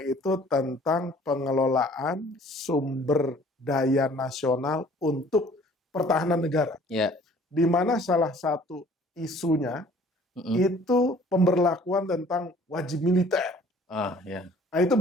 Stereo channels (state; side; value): normal; both; correlation 0.54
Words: itu tentang pengelolaan sumber daya nasional untuk pertahanan negara. Di mana salah satu isunya itu pemberlakuan tentang wajib militer. Nah, itu